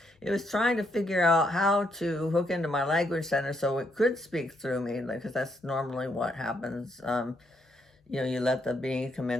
It was trying to figure out how to hook into my language center so it could speak through me, because that's normally what happens. You let the being come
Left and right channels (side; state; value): both; normal; correlation 0.75